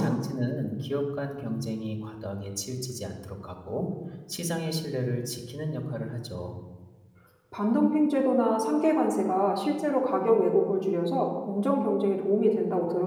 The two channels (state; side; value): identical; both; correlation 1.00